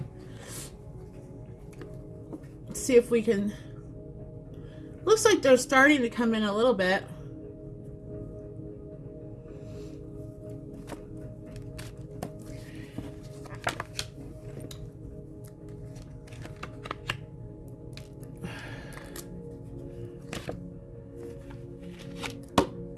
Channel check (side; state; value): both; identical; correlation 1.00